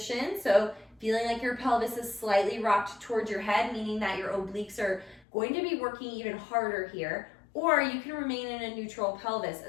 so feeling like your pelvis is slightly rocked towards your head, meaning that your obliques are going to be working even harder here, or you can remain in a neutral pelvis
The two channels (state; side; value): drops out; right; at 5.2 s